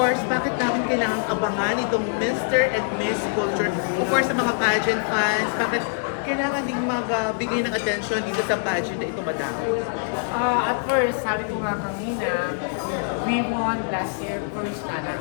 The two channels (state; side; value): silent; right; 63 dB below the other